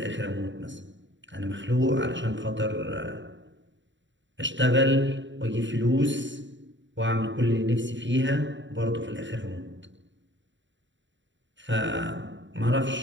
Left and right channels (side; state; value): left; late; 0.54 ms